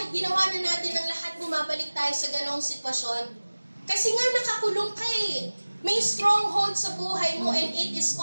ginawa na natin ang lahat, bumabalik tayo sa ganong sitwasyon. Kasi nga nakakulong ka eh. May stronghold sa buhay mo and it is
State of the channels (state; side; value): inverted; both; correlation -1.00